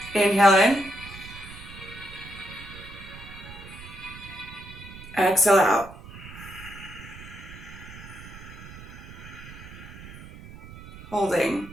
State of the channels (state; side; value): noise; right; rumble, 15 dB below the sound